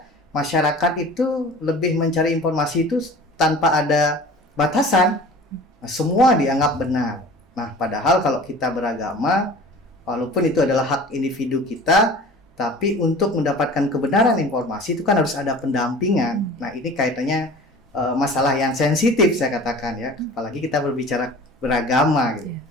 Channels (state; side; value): normal; both; correlation 0.42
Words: masyarakat itu lebih mencari informasi itu tanpa ada batasan. Nah, semua dianggap benar. Nah, padahal kalau kita beragama, walaupun itu adalah hak individu kita, tapi untuk mendapatkan kebenaran informasi itu kan harus ada pendampingan. Nah, ini kaitannya masalah yang sensitif saya katakan ya, apalagi kita berbicara beragama gitu.